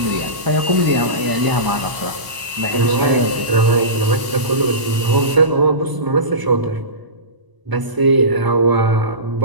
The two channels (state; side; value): late; left; 1.0 ms